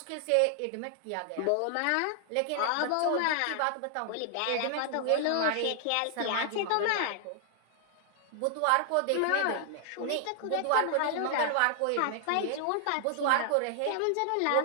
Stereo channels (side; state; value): both; different; correlation -0.01